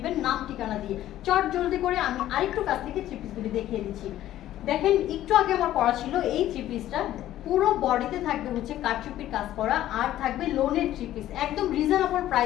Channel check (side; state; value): right; quieter; 13.3 dB